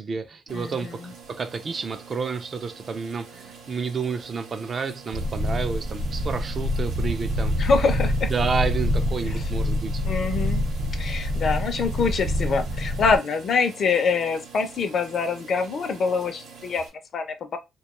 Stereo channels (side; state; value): both; normal; correlation 0.72